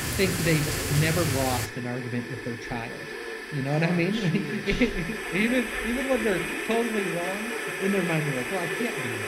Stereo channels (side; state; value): both; identical; correlation 1.00